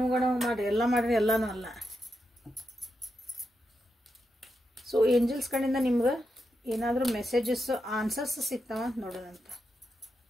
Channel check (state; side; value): normal; both; correlation 0.86